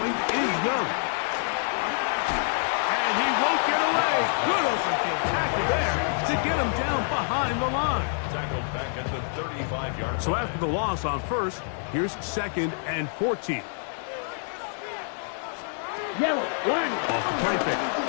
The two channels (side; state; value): right; silent; 60 dB below the other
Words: is Young. And he won't get away. Good open field tackle there to get him down behind the line. Tackled back at the 35-yard line. So after the loss on 1st, here's 2nd and 14. Yellow, line. Off the play fake.